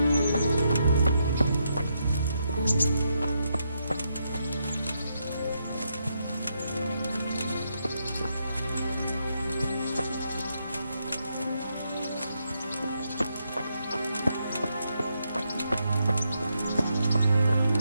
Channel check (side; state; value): both; inverted; correlation -0.80